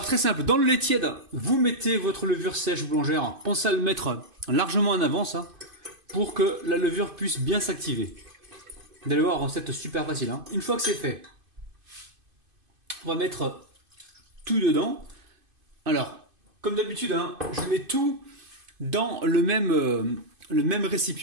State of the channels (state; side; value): late; left; 2.5 ms